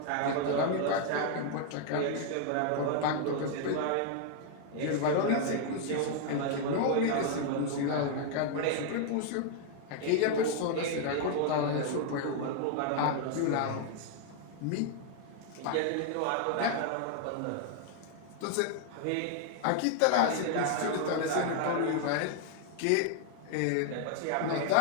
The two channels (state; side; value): different; both; correlation 0.00